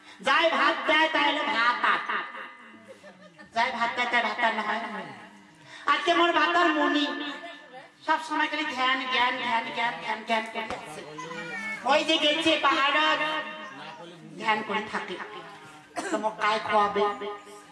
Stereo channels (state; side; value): identical; both; correlation 1.00